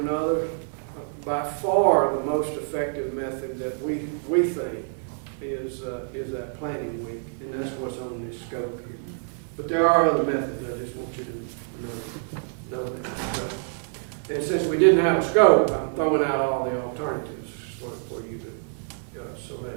By far, the most effective method that we think is that planning week, and that's what's on this scope here. But there are other methods. I just want you to know that. So, and since we didn't have a scope, I'm throwing out all the alternatives for you to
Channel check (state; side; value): silent; left; 55 dB below the other